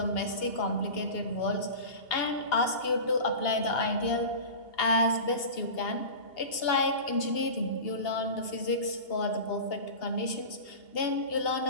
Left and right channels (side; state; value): right; late; 2.8 ms